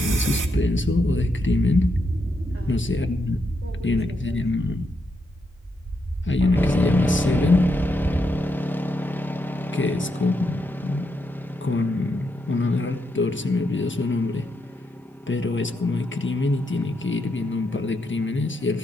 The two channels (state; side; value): normal; both; correlation 0.81